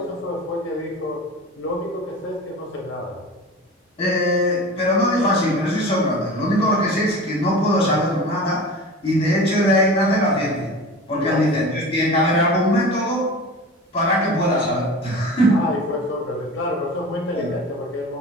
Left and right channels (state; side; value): normal; both; correlation 0.35